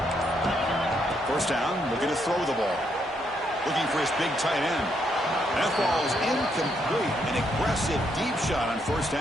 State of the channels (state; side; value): normal; both; correlation 0.76